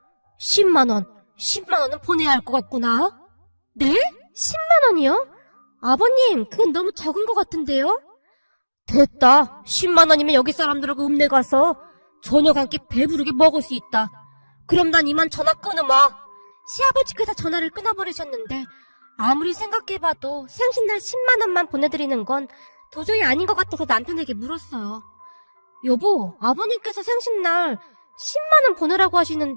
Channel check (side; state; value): both; inverted; correlation -1.00